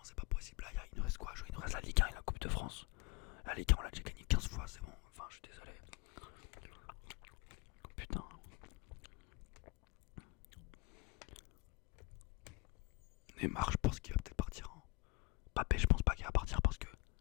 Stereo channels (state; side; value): quieter; right; 26.2 dB